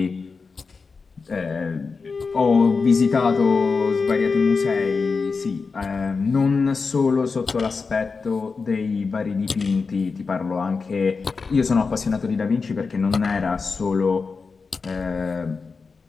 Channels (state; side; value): quieter; right; 4.7 dB